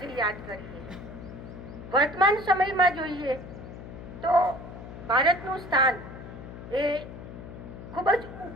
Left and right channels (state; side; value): noise; left; hum, 12 dB below the sound